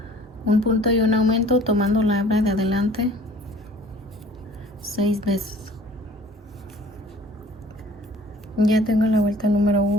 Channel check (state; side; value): normal; both; correlation 0.51